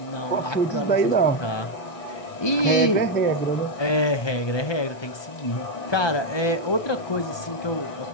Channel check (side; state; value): right; late; 1.2 ms